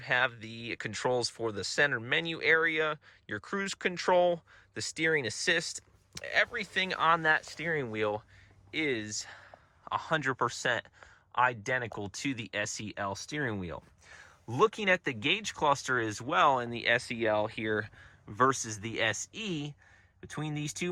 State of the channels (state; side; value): identical; both; correlation 1.00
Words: the controls for the center menu area, your cruise control, the steering assist. Everything on that steering wheel is 100% identical to the SEL steering wheel. Looking at the gauge cluster as well in the SEL here versus the SE, between these